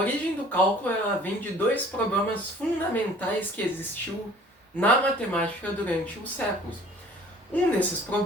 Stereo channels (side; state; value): both; normal; correlation 0.51